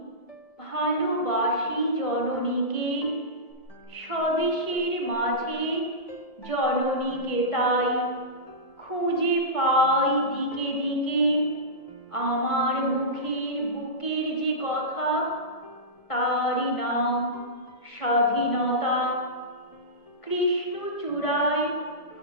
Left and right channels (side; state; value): right; late; 1.7 ms